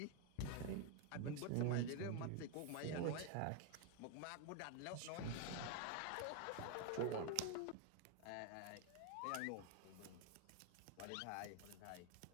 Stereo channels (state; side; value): different; both; correlation 0.01